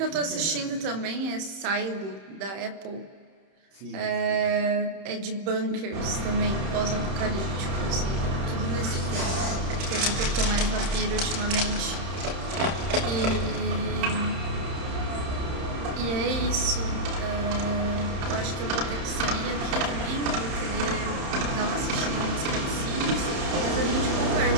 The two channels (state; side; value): late; left; 30 ms